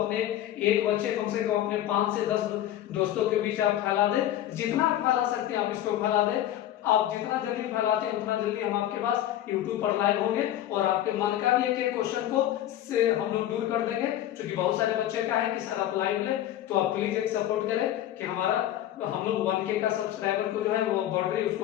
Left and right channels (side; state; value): right; quieter; 12.5 dB